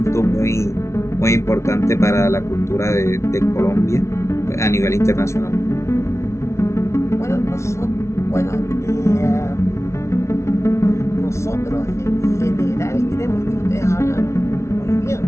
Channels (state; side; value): late; right; 0.13 ms